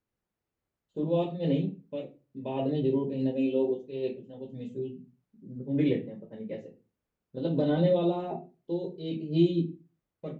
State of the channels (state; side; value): identical; both; correlation 1.00